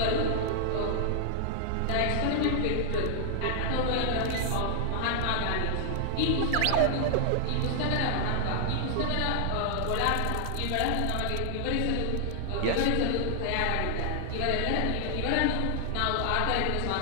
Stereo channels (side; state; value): both; different; correlation 0.00